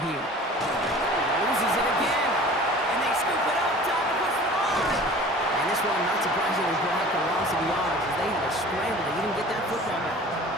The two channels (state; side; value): normal; both; correlation 0.43